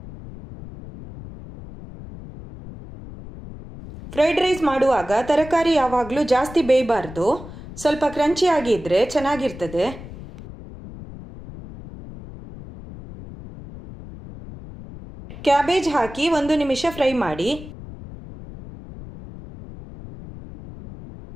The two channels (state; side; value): noise; left; rumble, 14 dB below the sound